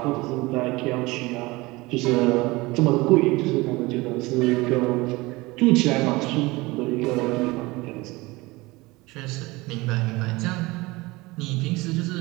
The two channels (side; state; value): left; quieter; 22.1 dB